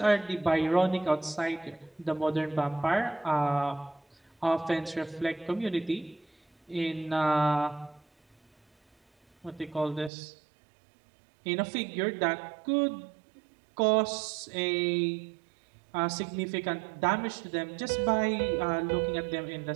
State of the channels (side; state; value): left; drops out; at 10.1 s